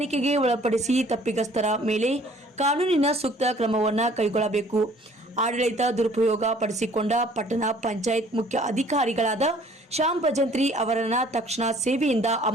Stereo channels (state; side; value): normal; both; correlation 0.56